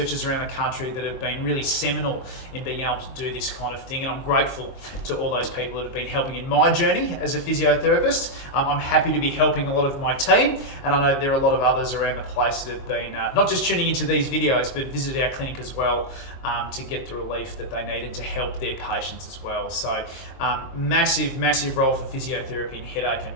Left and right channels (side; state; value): right; late; 23 ms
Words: around the country that have been really seminal in being able to do this kind of thing, and I'm grateful to all those people that have been helping in my journey as a physiotherapist. I'm happy to be helping a lot of my team, and I know there are a lot of others around the place that have been not just tuning into these videos, but visited our clinic as well to get the relief that they needed to help their patients as well. So massive role for physiotherapy in headache